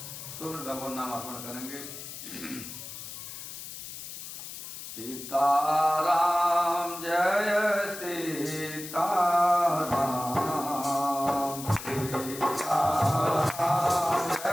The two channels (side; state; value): left; noise; hiss, 10 dB below the sound